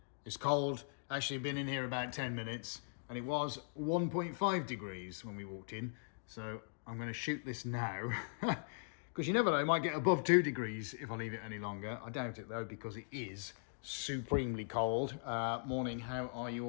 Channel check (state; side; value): silent; right; digital silence